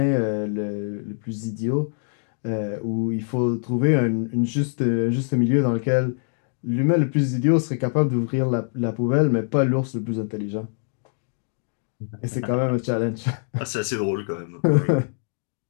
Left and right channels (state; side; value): silent; right; digital silence